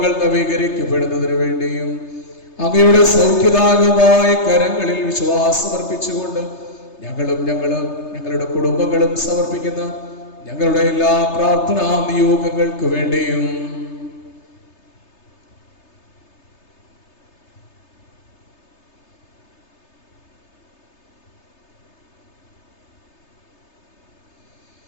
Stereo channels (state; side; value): late; right; 3.3 ms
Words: നവീകരിക്കപ്പെടുന്നതിന് വേണ്ടിയും അങ്ങയുടെ സൗഖ്യദായകമായ കരങ്ങളിൽ വിശ്വാസം അർപ്പിച്ചുകൊണ്ട് ഞങ്ങളുടെ കുടുംബങ്ങളും സമർപ്പിക്കുന്ന ഞങ്ങളുടെ എല്ലാ പ്രാർത്ഥനാ നിയോഗങ്ങൾക്ക് വേണ്ടിയും